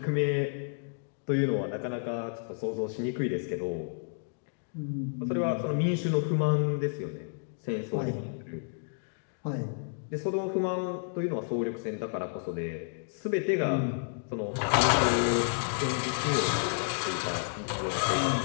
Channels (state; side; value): silent; right; digital silence